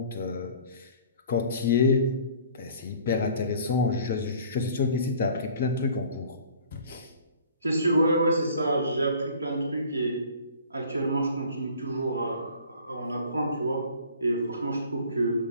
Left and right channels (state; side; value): inverted; both; correlation -0.50